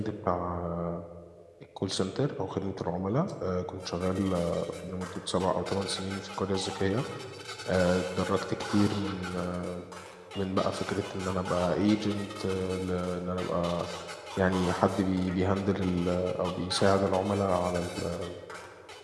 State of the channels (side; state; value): both; identical; correlation 1.00